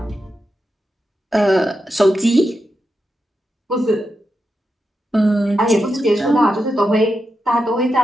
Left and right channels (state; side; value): normal; both; correlation 0.87